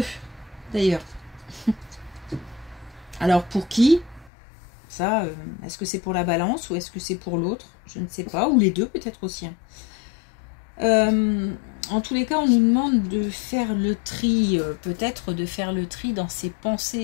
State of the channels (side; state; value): right; drops out; at 4.3 s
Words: d'ailleurs. Alors, pour qui? Ça, est-ce que c'est pour la balance ou est-ce que c'est pour l'autre? Je ne sais pas. Ou les deux, peut-être aussi. En tous les cas, on nous demande de faire le tri. Peut-être de faire le tri dans ses